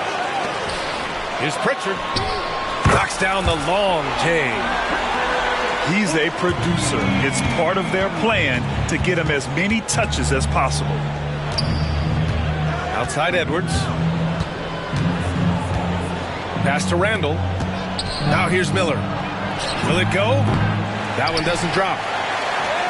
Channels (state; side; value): identical; both; correlation 1.00